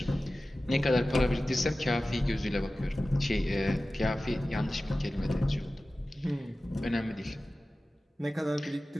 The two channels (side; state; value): both; normal; correlation 0.96